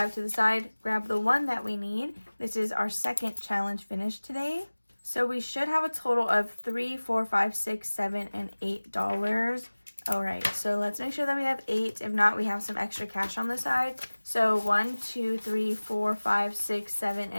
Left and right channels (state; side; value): inverted; both; correlation -1.00